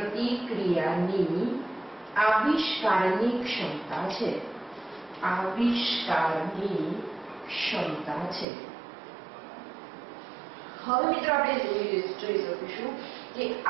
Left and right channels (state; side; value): drops out; left; at 8.5 s